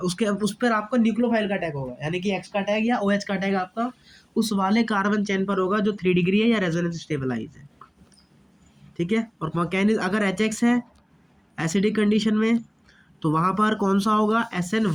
उसके उस पर आपका न्यूक्लियोफाइल का टैग होगा, यानी कि एक्स का टैग या OH का टैग आपका उस वाले कार्बन चेन पर होगा जो 3 डिग्री है या रेजोनेंस स्टेबलाइज है। ठीक है। और मैकेनिज्म, अगर HX है एसिडिक कंडीशन में तो वहाँ पर कौन सा होगा,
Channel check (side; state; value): both; identical; correlation 1.00